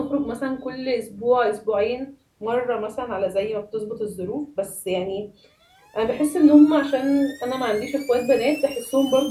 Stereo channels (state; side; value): identical; both; correlation 1.00